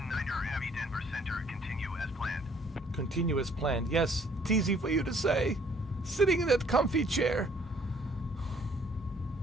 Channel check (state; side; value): normal; both; correlation 0.61